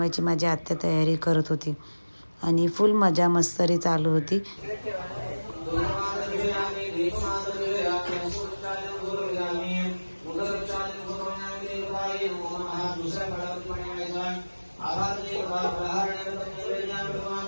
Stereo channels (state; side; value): inverted; both; correlation -1.00